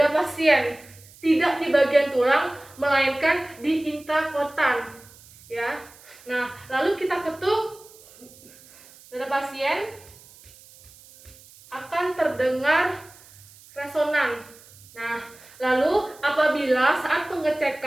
pasien, tidak di bagian tulang, melainkan di interkotan, ya. Nah, lalu kita ketuk dada pasien, akan terdengar resonan. Nah, lalu apabila saat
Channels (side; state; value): right; noise; hiss, 23 dB below the sound